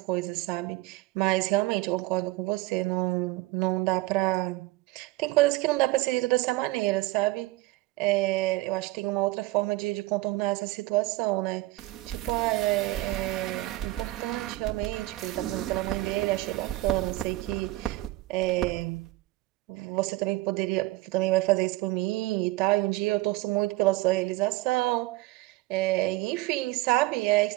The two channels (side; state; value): left; quieter; 19.1 dB